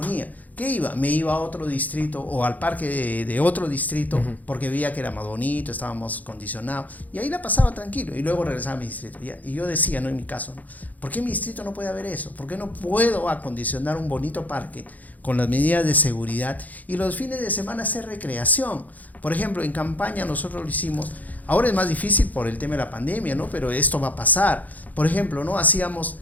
¿Qué iba? Me iba a otro distrito o al parque de otro distrito, uh-huh, porque veía que era más bonito, estábamos condicionados, y ahí la pasaba tranquilo y luego regresaba a mi distrito. Y yo decía, no en mi caso, ¿no? ¿Por qué en mi distrito no puede haber eso? ¿Por qué no puedo acondicionar un bonito parque con las medidas de seguridad y los fines de semana hacer recreación? Por ejemplo, en campaña nosotros lo hicimos. Ahora es más difícil por el tema de la pandemia, ¿no? Pero esto va a pasar. Por ejemplo, ¿no? Hacíamos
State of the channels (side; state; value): right; late; 0.079 ms